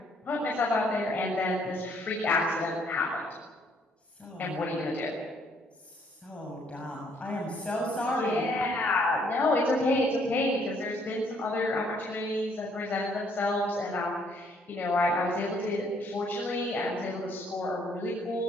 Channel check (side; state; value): both; normal; correlation 0.66